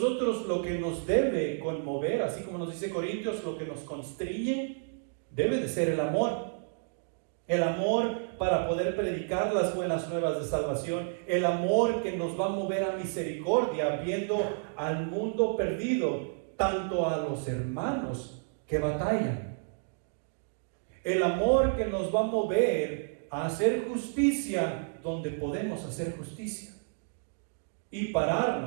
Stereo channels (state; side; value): silent; left; digital silence